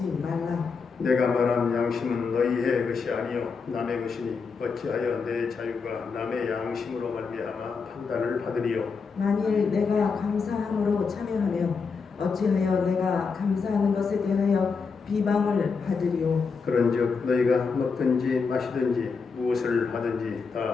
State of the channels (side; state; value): right; quieter; 5.1 dB